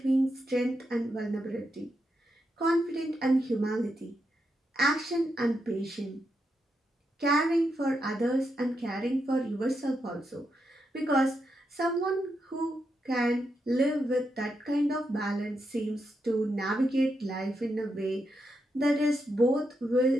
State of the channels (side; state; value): both; normal; correlation 0.83